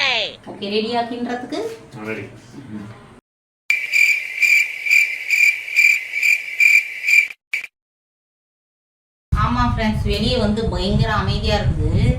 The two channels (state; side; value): identical; both; correlation 1.00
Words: ஓகே, ரெடியா கிண்டுறதுக்கு? ஆமாம் ஃப்ரெண்ட்ஸ், வெளியே வந்து பயங்கர அமைதியாக இருக்குது.